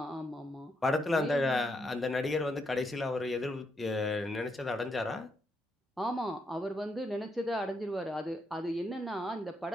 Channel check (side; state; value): both; normal; correlation 0.79